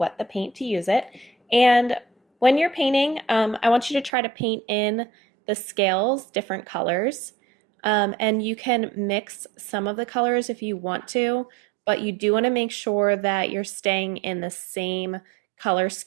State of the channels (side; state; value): left; drops out; at 4.1 s